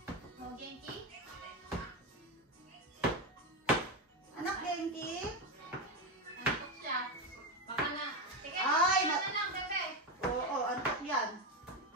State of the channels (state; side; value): normal; both; correlation 0.12